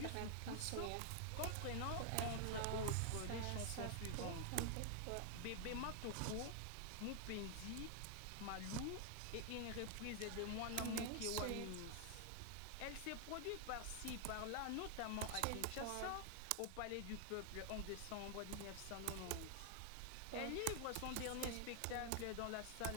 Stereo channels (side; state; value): both; different; correlation 0.00